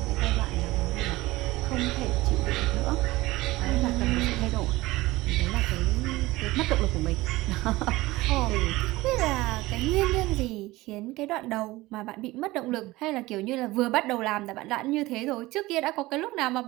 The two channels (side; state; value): left; quieter; 19.3 dB